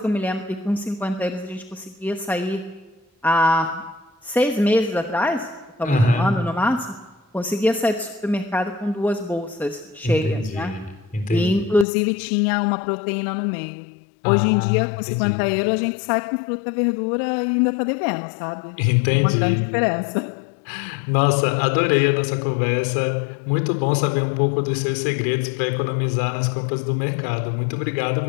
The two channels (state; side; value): drops out; right; at 11.9 s